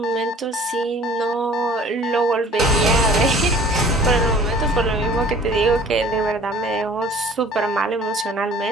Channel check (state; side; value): normal; both; correlation 0.49